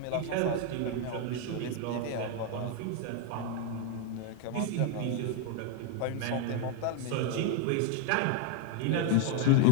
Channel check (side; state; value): both; different; correlation 0.01